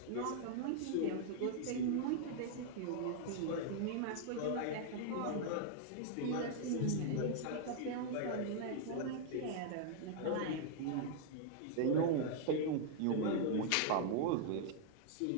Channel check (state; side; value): different; both; correlation -0.01